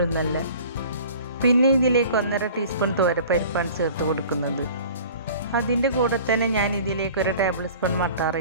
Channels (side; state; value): both; inverted; correlation -0.45